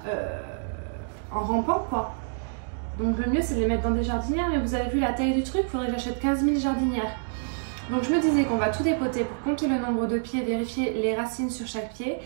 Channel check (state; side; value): silent; left; digital silence